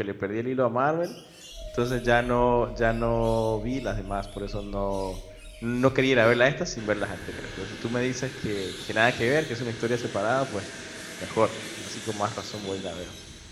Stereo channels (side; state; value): both; identical; correlation 1.00